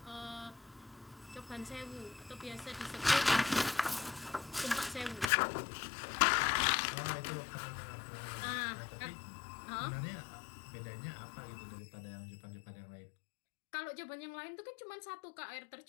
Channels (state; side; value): drops out; right; at 5.3 s